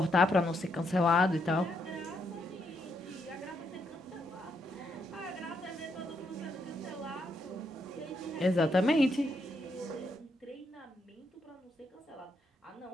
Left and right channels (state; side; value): normal; both; correlation 0.77